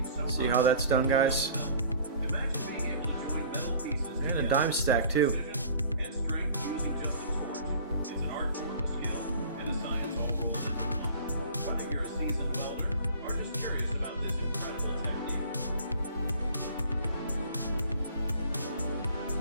See how that's done, guys? Imagine being able to join metal pieces And a dime stack too.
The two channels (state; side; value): inverted; both; correlation -0.47